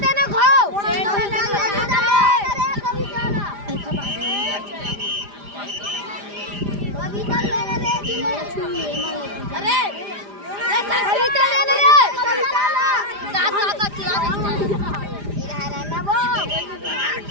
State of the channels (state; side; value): late; left; 4.9 ms